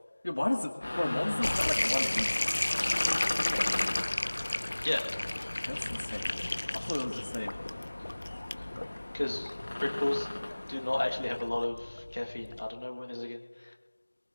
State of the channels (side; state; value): both; inverted; correlation -1.00